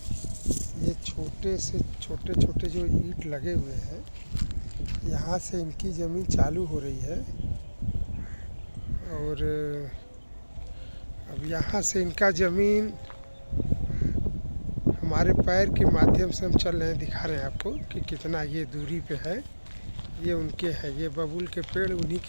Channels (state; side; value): inverted; both; correlation -1.00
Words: ये छोटे से छोटे छोटे जो ईंट लगे हुए हैं, यहाँ से इनकी ज़मीन चालू हो रही है। और अब यहाँ से इनका ज़मीन हमारे पैर के माध्यम से हम चल रहे हैं, दिखा रहे हैं आपको कि कितना ये दूरी पे है। ये उनके है, ये बबूल के पेड़ उन्हीं